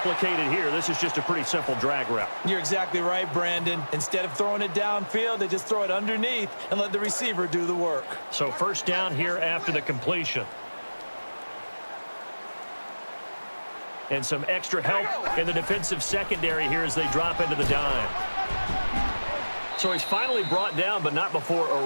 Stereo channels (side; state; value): both; inverted; correlation -1.00